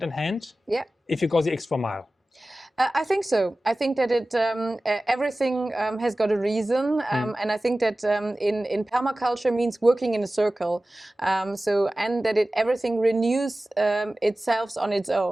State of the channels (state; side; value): normal; both; correlation 0.96